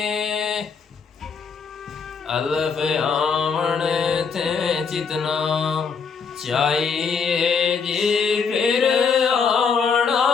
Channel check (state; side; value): quieter; right; 5.8 dB